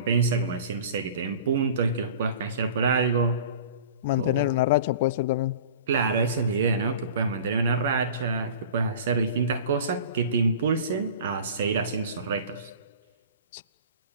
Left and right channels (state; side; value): inverted; both; correlation -0.40